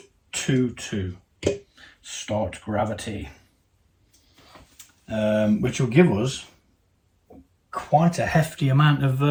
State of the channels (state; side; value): identical; both; correlation 1.00